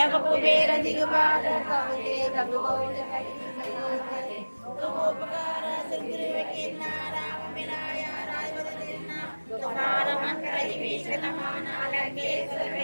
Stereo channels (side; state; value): both; inverted; correlation -1.00